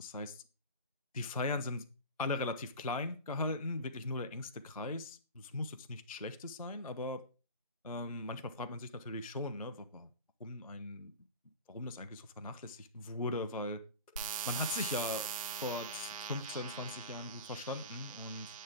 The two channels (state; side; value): inverted; both; correlation -0.31